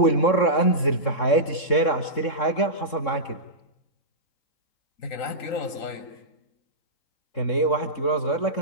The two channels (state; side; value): late; right; 3.6 ms